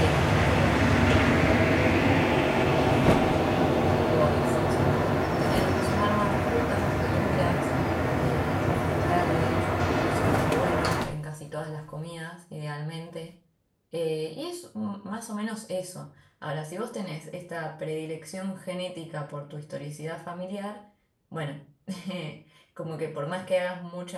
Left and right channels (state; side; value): identical; both; correlation 1.00